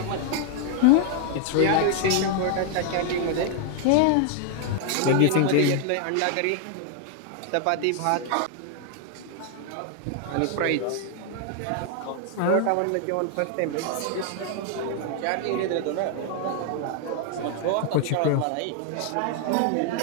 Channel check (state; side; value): different; both; correlation 0.00